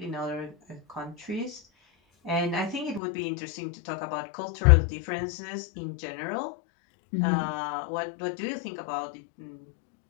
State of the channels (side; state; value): right; drops out; at 3.0 s